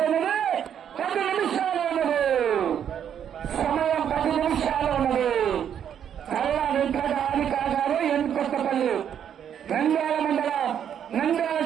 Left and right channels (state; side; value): quieter; left; 9.0 dB